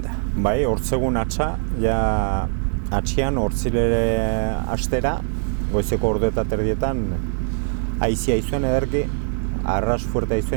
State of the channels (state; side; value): silent; left; digital silence